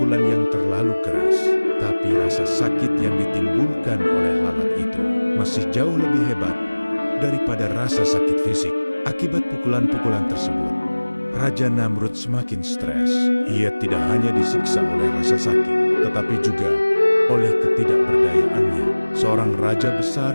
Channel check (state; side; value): inverted; both; correlation -1.00